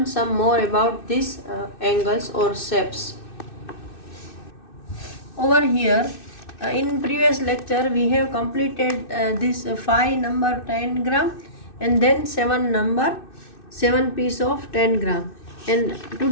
some more about these angles or shapes. Over here in previous lecture we have completed this 5 number 10 gram and then 7 piece of 10 gram, and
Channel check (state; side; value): late; right; 2.6 ms